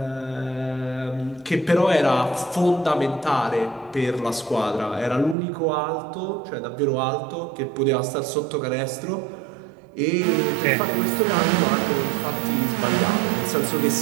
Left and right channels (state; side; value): drops out; left; at 5.4 s